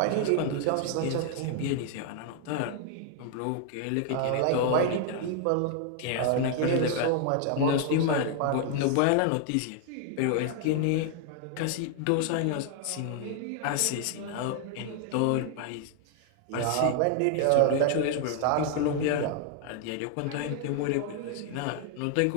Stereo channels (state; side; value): different; both; correlation 0.00